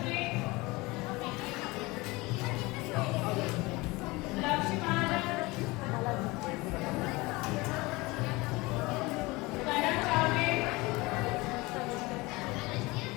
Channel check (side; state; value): right; quieter; 22.8 dB